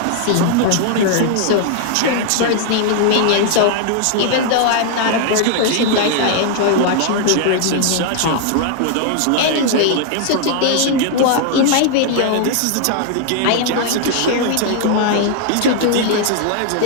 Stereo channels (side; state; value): both; different; correlation 0.00